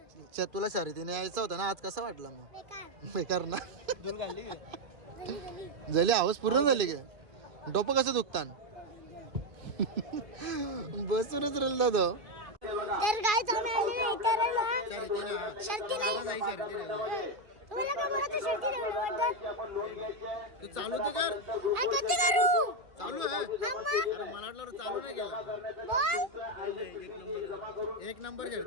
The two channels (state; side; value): late; left; 2.4 ms